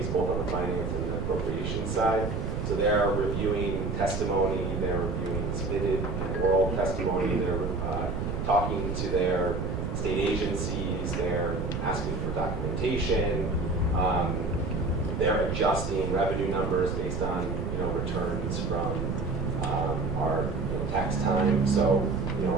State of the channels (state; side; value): noise; right; rumble, 3 dB below the sound